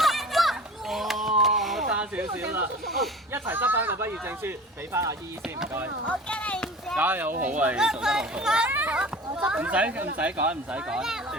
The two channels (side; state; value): both; normal; correlation 0.39